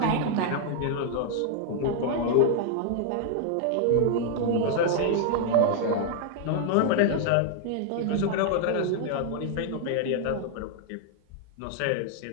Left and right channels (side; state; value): both; different; correlation 0.00